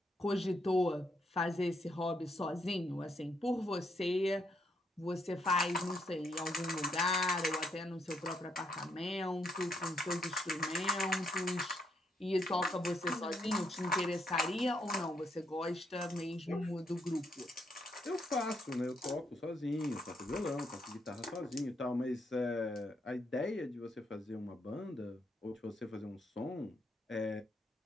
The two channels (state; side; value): normal; both; correlation 0.76